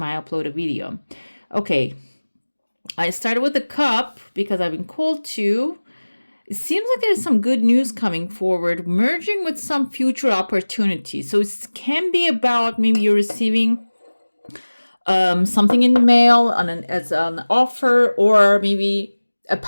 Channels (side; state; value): both; inverted; correlation -1.00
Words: I upload a video. Okay. I started with the cup because I've been called to. It seems like there's some good news coming forward, merging with some future opportunities. So it can be about maybe you're receiving something in the mail as an offer, or maybe a